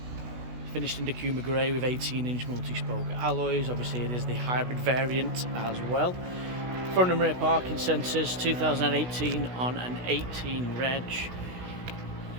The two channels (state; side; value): late; left; 16 ms